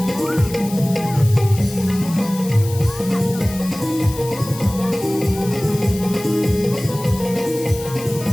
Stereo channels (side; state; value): left; noise; hiss, 14 dB below the sound